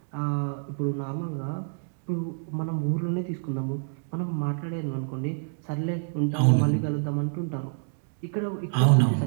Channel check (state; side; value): silent; left; digital silence